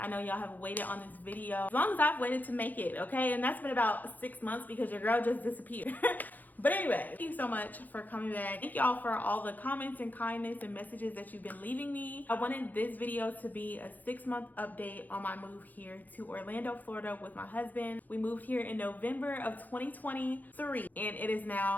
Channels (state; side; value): late; right; 0.083 ms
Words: know y'all have waited on this video as long as I've waited to make it, okay? And that's been about 6 months because your girl just disappeared. But anyway, thank you so much for coming back. Thank y'all for all the comments and kindness and messages that you've been leaving me. I wanted this video to be a 6-month update on my move here to Orlando, Florida with my husband. We moved here in November of 2023 and it is